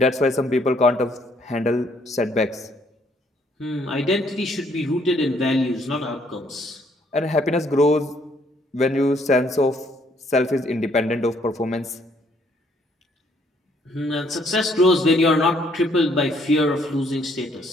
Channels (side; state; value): both; normal; correlation 0.67